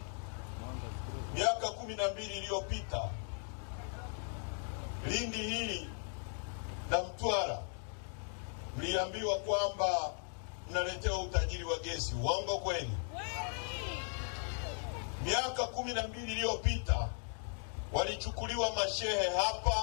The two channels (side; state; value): right; silent; 53 dB below the other